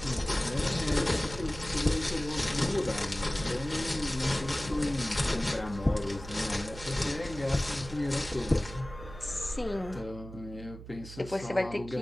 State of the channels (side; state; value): right; noise; hum, 14 dB below the sound